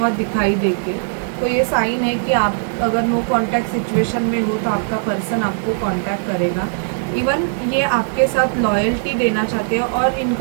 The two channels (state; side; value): silent; left; digital silence